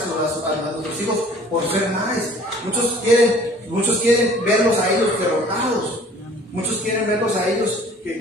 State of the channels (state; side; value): normal; both; correlation 0.51